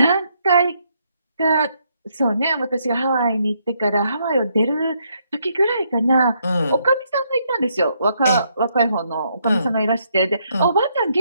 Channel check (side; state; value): both; inverted; correlation -0.74